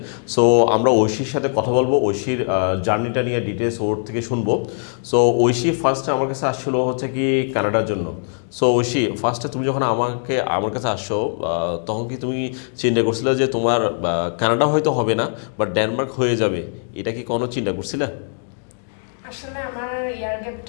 সো আমরা ঐশীর সাথে কথা বলবো, ঐশীর জার্নিটা নিয়ে ডিটেলস ওর থেকে শুনবো। সো ঐশী ফার্স্টে আমার কাছে আসছিল হচ্ছে কি কানাডার জন্য। সো ঐশী, ফার্স্টে তুমি যখন আমার কাছে আসছো তখন কি তুমি চিন্তা করছিলে যে তোমার কানাডা হয়তো হবে না বাট ডেনমার্ক হয়ে যাবে, এটা কি কোনো চিন্তা করছিলে? আসলে আমার ইয়ার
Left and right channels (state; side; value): silent; right; digital silence